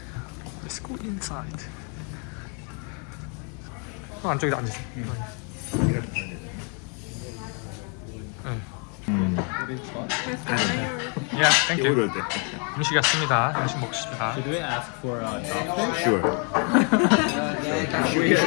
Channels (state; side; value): quieter; right; 38.0 dB